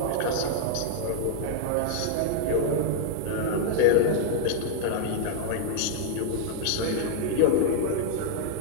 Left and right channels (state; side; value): different; both; correlation 0.00